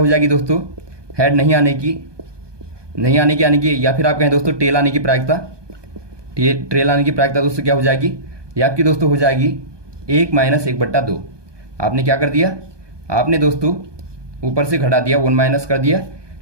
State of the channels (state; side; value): late; left; 1.2 ms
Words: जाएगी दोस्तों, हेड नहीं आने की या फिर आप कहें दोस्तों टेल आने की प्रायिकता दोस्तों क्या हो जाएगी, ये आपकी दोस्तों हो जाएगी 1 माइनस 1/2। आपने क्या कर दिया, आपने दोस्तों ऊपर से घटा दिया, 1 माइनस कर दिया